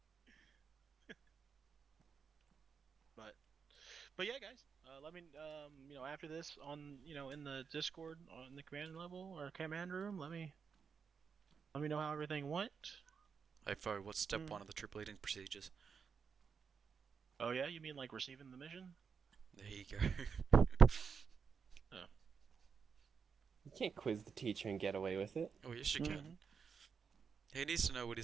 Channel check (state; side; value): quieter; left; 6.1 dB